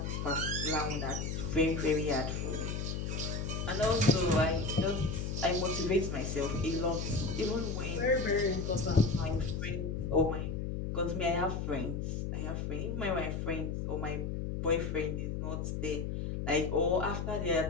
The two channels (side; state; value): left; noise; hum, 3 dB below the sound